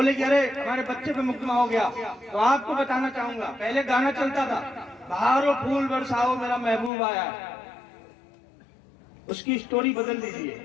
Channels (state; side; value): drops out; right; at 6.9 s